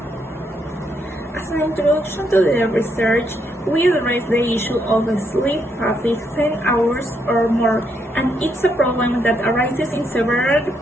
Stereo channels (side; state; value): both; normal; correlation 0.76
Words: As an introduction to the research, we address the issue of sleep fatigue 10 hours or more, and it's a problem that arises in several